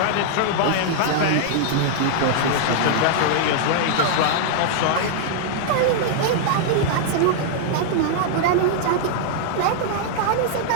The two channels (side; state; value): both; different; correlation -0.01